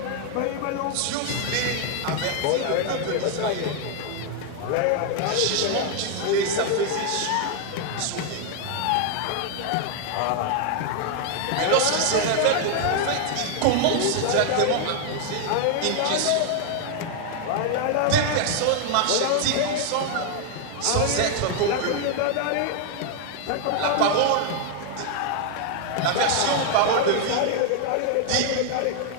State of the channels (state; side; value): different; both; correlation 0.00